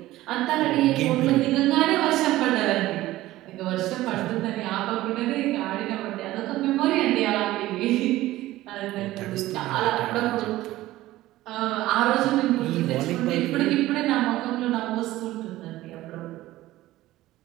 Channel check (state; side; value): quieter; left; 16.3 dB